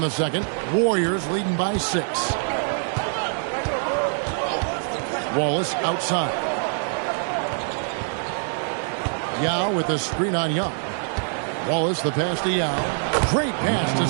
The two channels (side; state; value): left; silent; 62 dB below the other